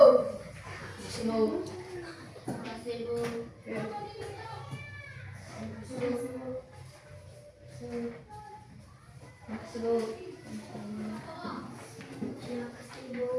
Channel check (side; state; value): both; identical; correlation 1.00